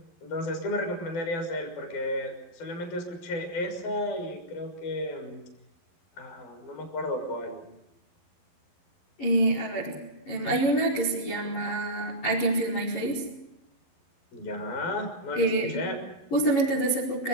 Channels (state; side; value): late; right; 11 ms